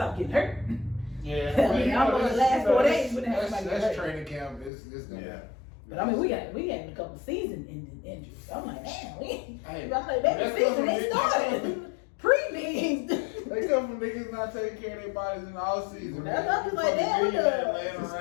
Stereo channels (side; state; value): right; drops out; at 4.7 s